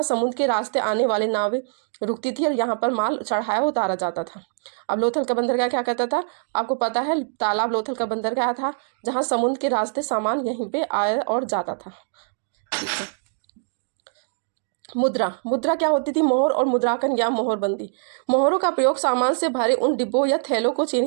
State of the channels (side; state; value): left; silent; digital silence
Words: समुद्र के रास्ते आने वाले नावें रुकती थी और यहाँ पर माल चढ़ाया उतारा जाता था। अब लोथल का बंदरगाह क्या कहता था, आपको पता है, तालाब लोथल का बंदरगाह था जहाँ समुद्र के रास्ते सामान यहीं पे आया और जाता था। ठीक है, मुद्रा क्या होती थी, मोहर और मुद्रांकन या मोहरबंदी। मोहरों का प्रयोग सामान से भरे उन डिब्बों या थैलों को